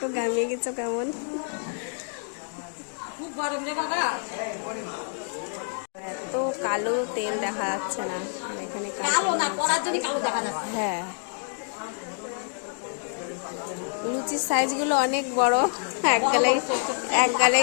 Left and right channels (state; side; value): silent; right; 55 dB below the other